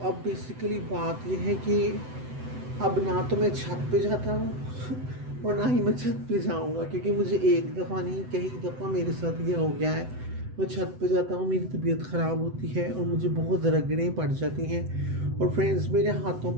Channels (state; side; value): late; left; 7.9 ms